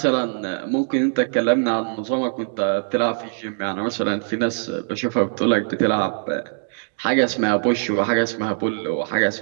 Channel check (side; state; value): left; silent; digital silence